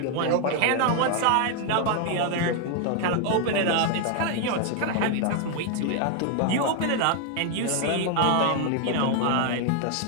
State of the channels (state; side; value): different; both; correlation 0.00